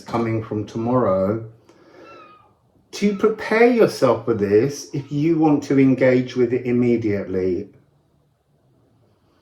coming from tomorrow to prepare yourself for this if you want to engage with it immediately.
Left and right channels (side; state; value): both; identical; correlation 1.00